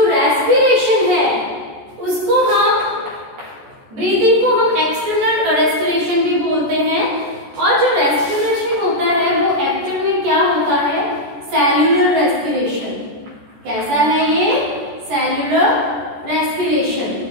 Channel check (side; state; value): left; late; 14 ms